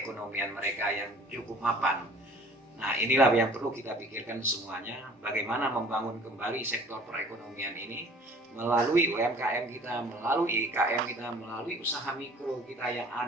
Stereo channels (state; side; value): normal; both; correlation 0.50